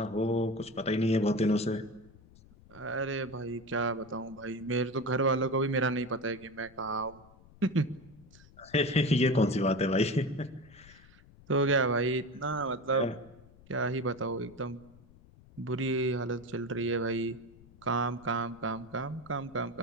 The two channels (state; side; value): noise; left; rumble, 24 dB below the sound